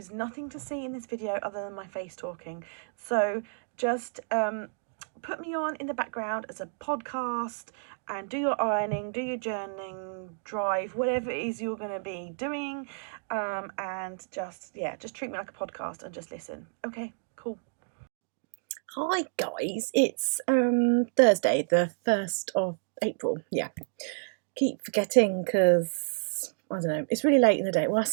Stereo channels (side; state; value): left; silent; digital silence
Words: nothing to see in this video other than my face talking, so just put me on in the background as a podcast and do your ironing, do your journaling, drive, whatever it is you're going to be doing, and just treat me like a podcast and just listen. Okay, cool. Hi guys, it's Thursday, the 1st of April. Yeah, keep forgetting because I don't know, it's really late in the day. Well, I